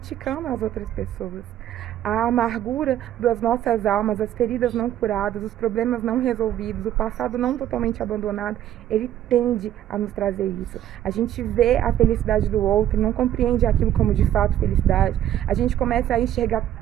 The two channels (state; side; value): quieter; left; 11.8 dB